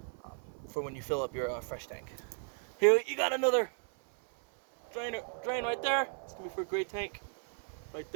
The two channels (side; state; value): left; silent; 55 dB below the other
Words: for when you fill up your fresh tank. Here you got another drain right there. It's gonna be for a gray tank right